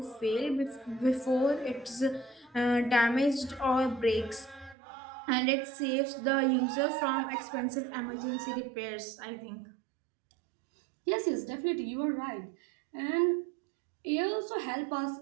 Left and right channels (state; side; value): drops out; left; at 4.8 s